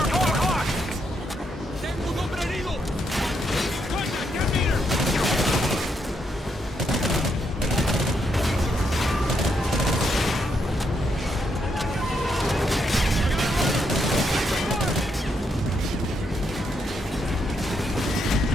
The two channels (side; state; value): both; normal; correlation 0.78